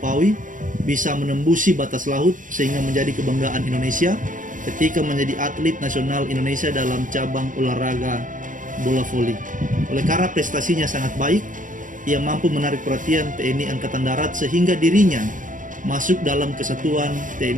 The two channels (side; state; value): left; late; 0.38 ms